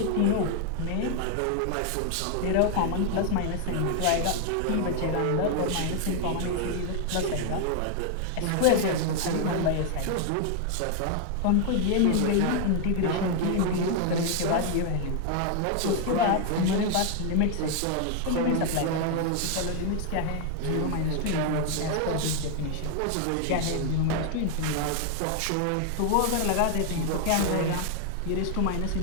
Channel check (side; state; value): both; different; correlation 0.00